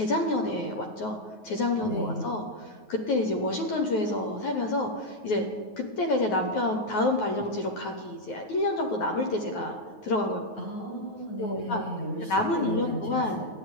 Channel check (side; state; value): right; late; 9.4 ms